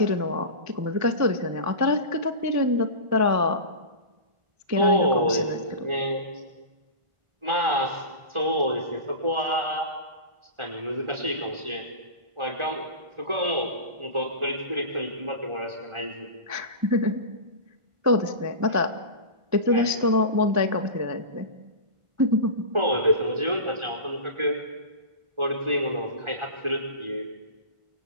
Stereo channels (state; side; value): late; left; 1.4 ms